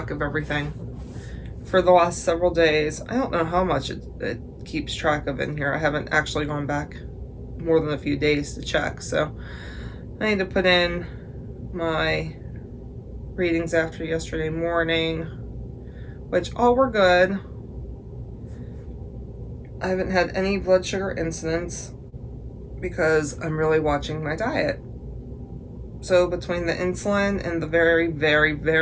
of everything for the last several days. I don't know how much it keeps track of in here. I haven't actually gone back more than a few days to check, so I need to put in my readings after yesterday morning, which all were good. I haven't had any blood sugar incidents because I'm really watching my diet. So between the insulin and the very, very,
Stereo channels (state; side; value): identical; both; correlation 1.00